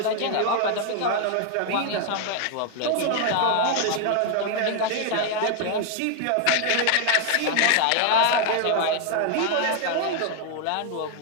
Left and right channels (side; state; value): both; different; correlation 0.00